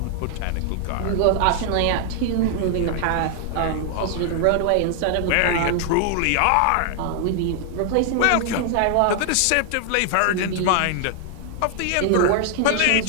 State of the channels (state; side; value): different; both; correlation 0.00